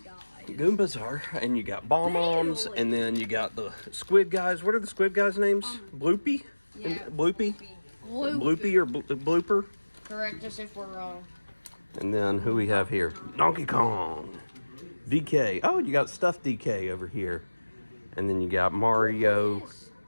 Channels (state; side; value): inverted; both; correlation -1.00